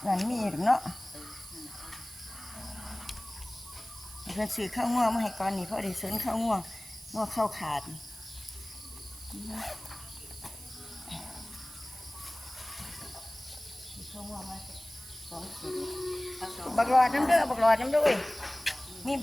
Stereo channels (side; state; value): right; noise; hiss, 16 dB below the sound